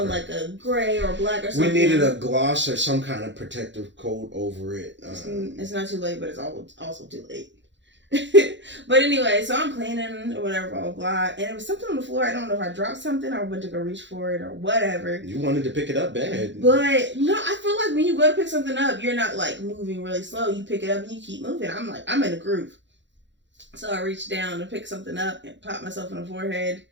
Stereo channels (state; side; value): late; left; 0.53 ms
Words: unlike a gray or black or something. We needed a gloss or some kind of protective coat over it. It's not too late, but it's also too late. But anyway, so I'm cleaning or whatever, blah, blah, blah. And it was something on the floor. I don't know if I dropped something or went to go reach for it or whatever. You wanted to pick it up bad. But no, I feel like when you go to pick something up, you're not like moving really slow. You pick it up and you keep moving. I'm in a groove. So I reached down to pick something up and pop myself in the forehead